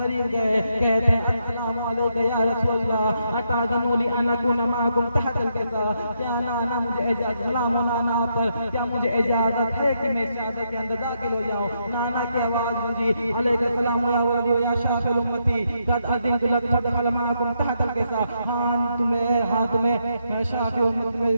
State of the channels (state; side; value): inverted; both; correlation -0.79